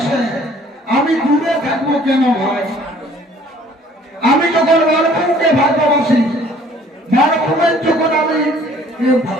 আমি দূরে থাকবো কেন ভাই? আমি যখন মানভূমকে ভালোবাসি, মানভূমের যখন আমি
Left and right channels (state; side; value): normal; both; correlation 0.55